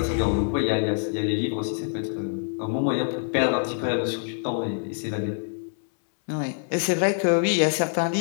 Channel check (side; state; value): right; silent; 62 dB below the other